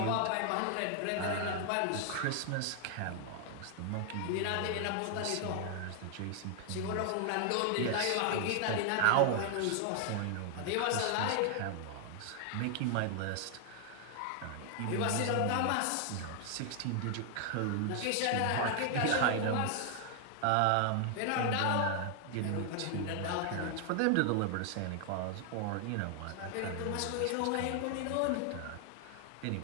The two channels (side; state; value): both; different; correlation 0.00